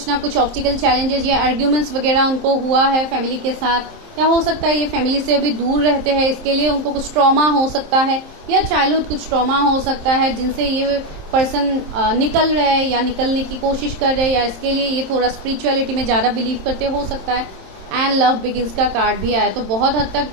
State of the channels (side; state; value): left; late; 27 ms